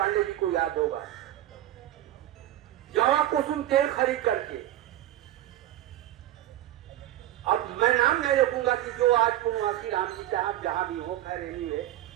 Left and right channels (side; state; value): left; quieter; 13.7 dB